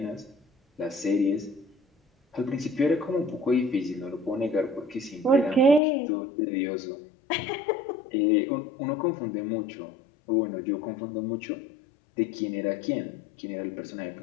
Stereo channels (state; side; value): drops out; right; at 5.8 s